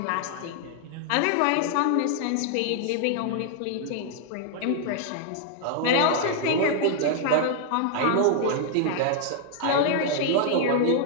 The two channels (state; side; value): different; both; correlation 0.00